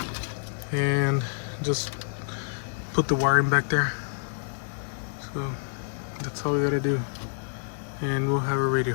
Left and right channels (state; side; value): silent; right; digital silence